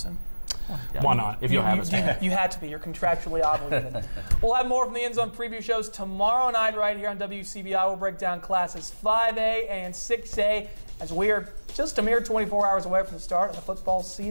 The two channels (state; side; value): inverted; both; correlation -1.00